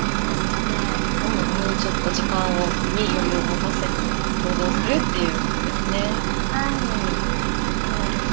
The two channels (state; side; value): silent; left; digital silence